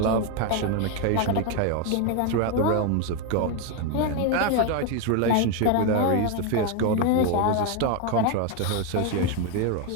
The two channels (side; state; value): both; different; correlation 0.01